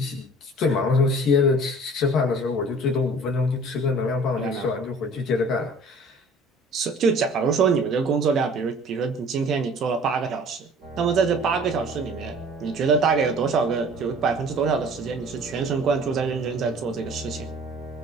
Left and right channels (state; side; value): normal; both; correlation 0.48